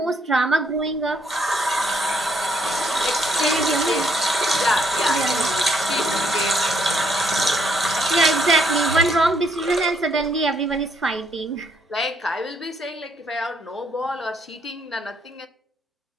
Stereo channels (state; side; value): normal; both; correlation 0.71